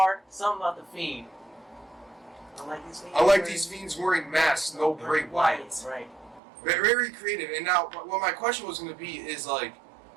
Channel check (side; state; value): left; drops out; at 6.4 s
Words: Something about the Fiend. I like these fiends wearing masks, no Bray Wyatt. Right. Very creative. And now, what my question was going to be is like,